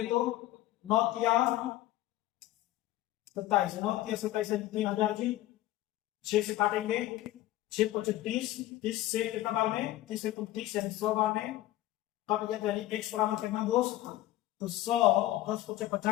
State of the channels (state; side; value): quieter; right; 15.3 dB